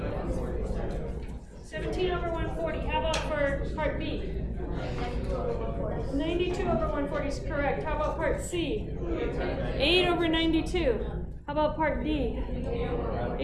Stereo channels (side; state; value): both; identical; correlation 1.00